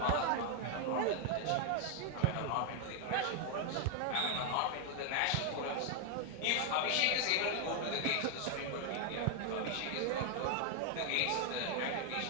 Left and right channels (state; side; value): different; both; correlation 0.00